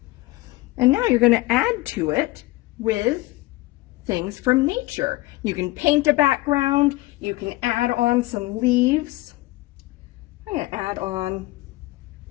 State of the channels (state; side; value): quieter; right; 19.5 dB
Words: And now you're going to add to it with things from nature. You can paint a background. You can add on some leaves. I'm going to add on